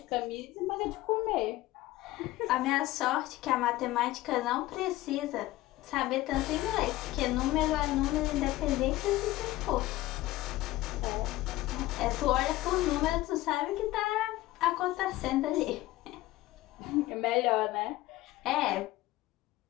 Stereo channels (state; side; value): quieter; right; 17.3 dB